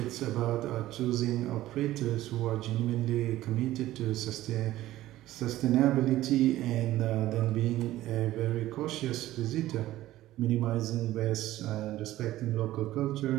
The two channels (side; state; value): left; quieter; 15.2 dB